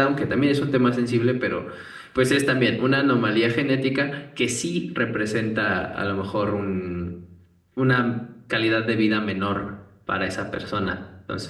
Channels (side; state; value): both; identical; correlation 1.00